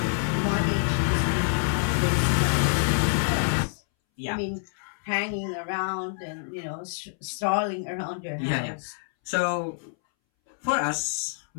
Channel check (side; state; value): right; silent; 60 dB below the other